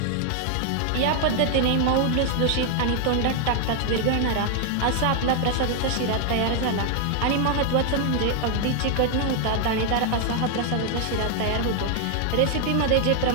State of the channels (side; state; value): both; different; correlation 0.00